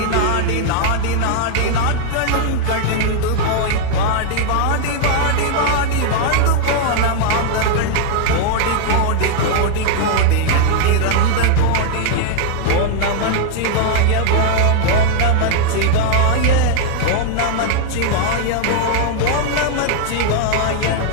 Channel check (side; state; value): both; different; correlation 0.00